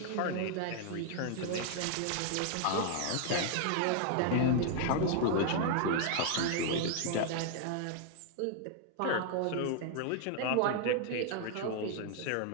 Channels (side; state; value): both; different; correlation -0.01